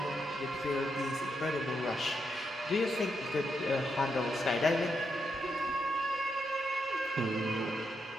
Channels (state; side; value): normal; both; correlation 0.82